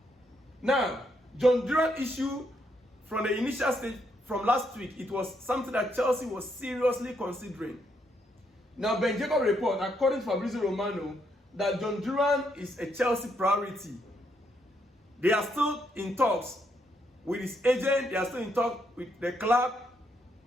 Now, Olise and Duran issue from the initial stage from last week, it was something that Chelsea was seriously considering. Now, Ben Jacob report, according to Fabrizio Romano, that Olise and Duran is a Chelsea priority. They are still in talks with his agent, they are still in talks with the club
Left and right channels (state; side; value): normal; both; correlation 0.76